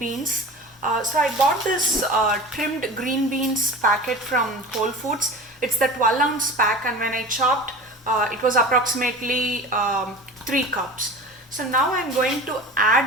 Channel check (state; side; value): normal; both; correlation 0.34